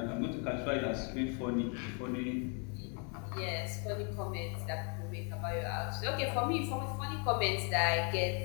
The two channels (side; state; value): right; quieter; 38.2 dB